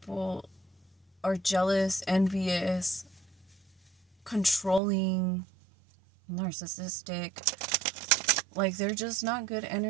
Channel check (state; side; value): drops out; left; at 4.8 s